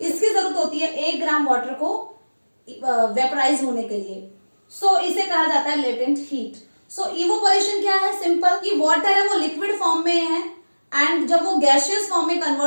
इसकी जरूरत होती है 1 ग्राम वाटर को वेपराइज होने के लिए। सो इसे कहा जाता है लेटेंट हीट। सो इवोपोरेशन क्या है, सिंपल कि वाटर है वो लिक्विड फॉर्म में है एंड जब वो गैसियस फॉर्म में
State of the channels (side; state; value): both; inverted; correlation -1.00